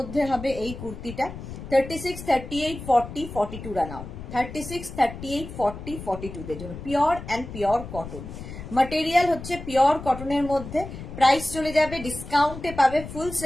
হবে এই কুর্তিটা। 36, 38, 40, 42 রানাও। 36, 38, 40, 42 দের জন্য pure and pure cotton. Material হচ্ছে পিওর কটনের মধ্যে। প্রাইস চলে যাবে, ডিসকাউন্টে পাবে, ফুল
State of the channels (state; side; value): noise; left; rumble, 11 dB below the sound